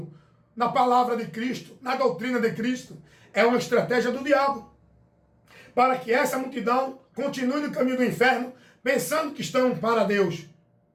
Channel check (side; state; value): both; identical; correlation 1.00